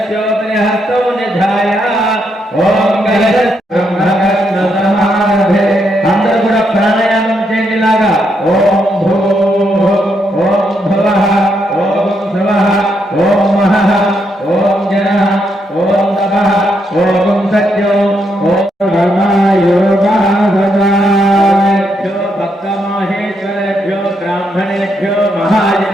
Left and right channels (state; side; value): normal; both; correlation 0.78